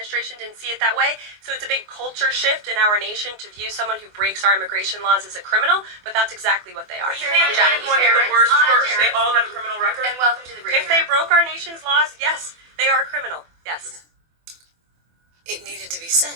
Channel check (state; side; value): late; left; 24 ms